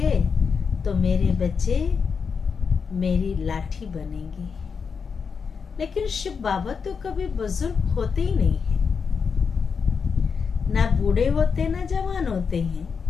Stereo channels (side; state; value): right; quieter; 5.8 dB